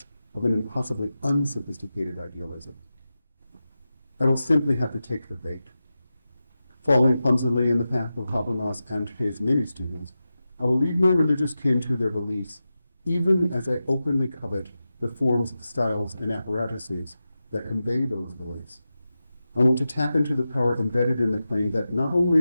of an impossibly unsophisticated idealism. I will simply have to take the bait. Following clumsily in the path of Habermas and his many students, I will leave my religious kin to their beliefs, even as I openly covet the forms, styles, and apparatuses that convey those beliefs. I want to tap into the power embedded in the claim that not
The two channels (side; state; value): both; inverted; correlation -0.93